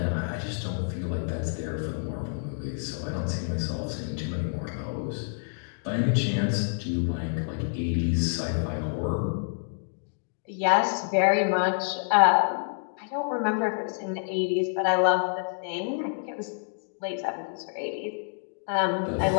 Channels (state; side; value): silent; right; digital silence